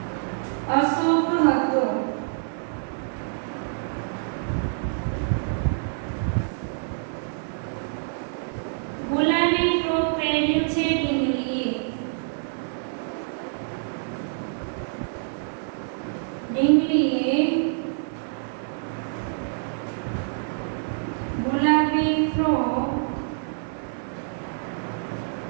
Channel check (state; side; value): silent; left; 61 dB below the other